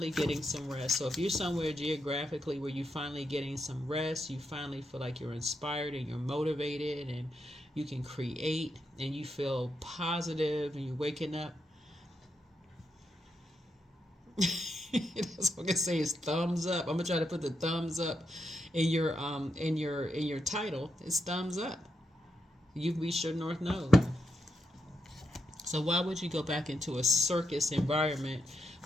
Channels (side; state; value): both; normal; correlation 0.83